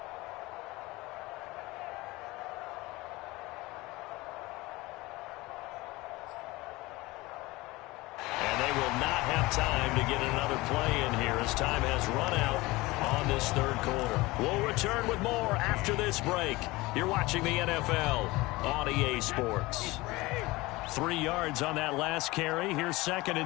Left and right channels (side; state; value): right; quieter; 21.2 dB